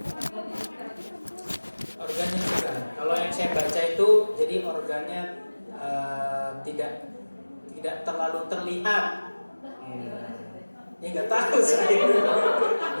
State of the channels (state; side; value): inverted; both; correlation -1.00